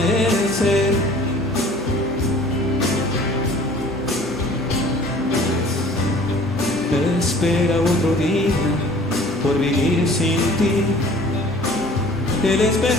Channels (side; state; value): both; normal; correlation 0.49